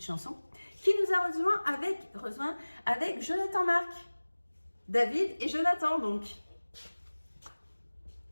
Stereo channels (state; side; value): inverted; both; correlation -1.00